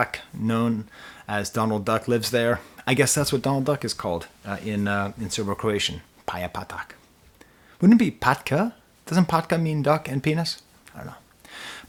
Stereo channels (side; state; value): both; identical; correlation 1.00